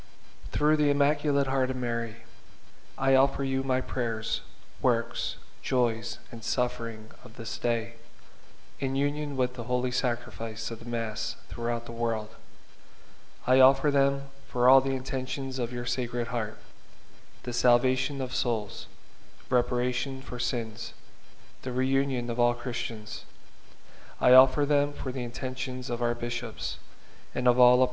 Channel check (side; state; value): both; identical; correlation 1.00